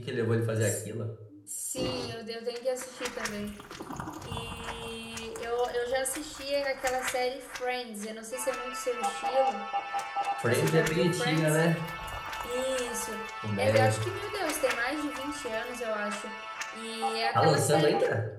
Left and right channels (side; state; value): both; identical; correlation 1.00